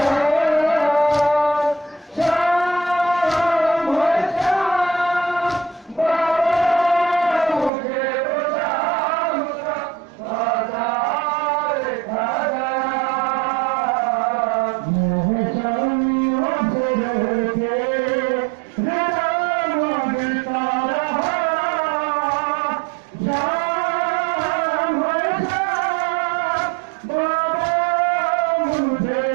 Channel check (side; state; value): left; drops out; at 7.7 s